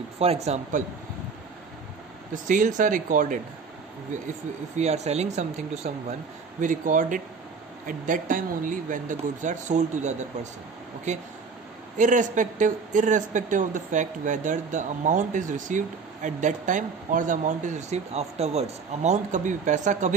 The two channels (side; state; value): left; quieter; 5.1 dB